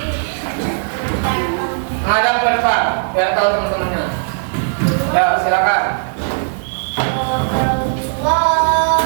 Ngadap ke depan biar tahu teman-temannya. Ya, silakan. Allahu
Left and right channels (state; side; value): silent; left; digital silence